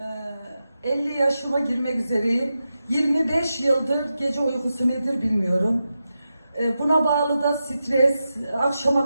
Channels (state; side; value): inverted; both; correlation -0.90